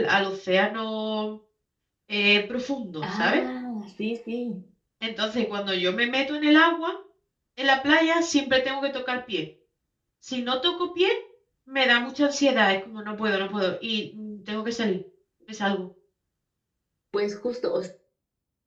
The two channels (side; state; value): both; identical; correlation 1.00